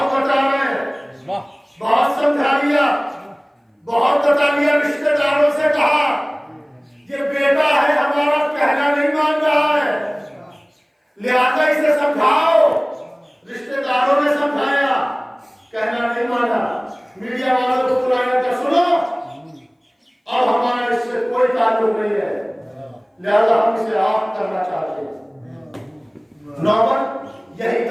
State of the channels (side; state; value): both; identical; correlation 1.00